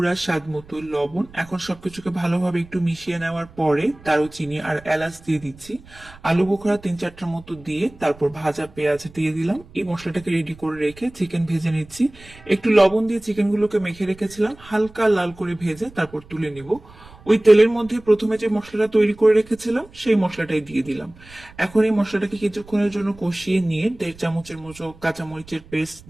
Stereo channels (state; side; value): noise; right; rumble, 22 dB below the sound